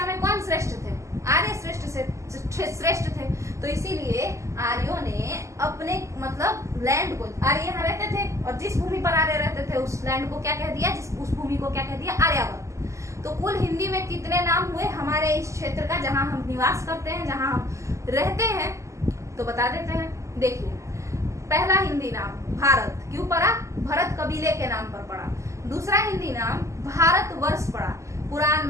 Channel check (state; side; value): late; left; 0.14 ms